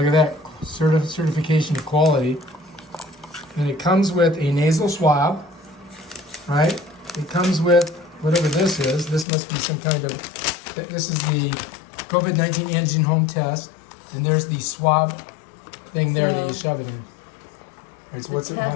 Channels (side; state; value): right; drops out; at 9.2 s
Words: at that certification of quality. And it comes with a nasal swab, right? It comes with whatever this is. This must be some kind of, this is the COVID-19 Antigen Home Test. And there's the swab thing there that you shove it in. All right, so what's it, how